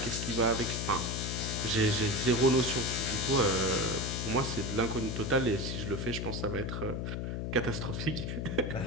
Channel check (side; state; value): left; noise; hum, 3 dB below the sound